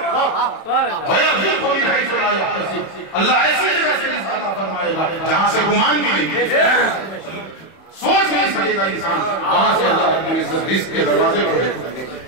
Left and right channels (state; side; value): late; right; 31 ms